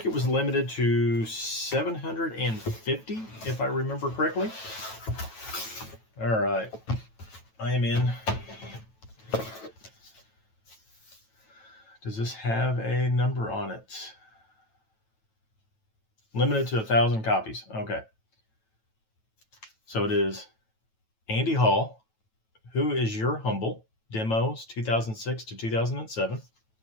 it was limited to 750, if I remember correctly. All right, I am in. Does this have a number on it? Limited to 1,000 copies. Okay. So it is Andy Hall, Who Is Your Humble? Demos 2006 to 2007.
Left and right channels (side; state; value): right; late; 9.1 ms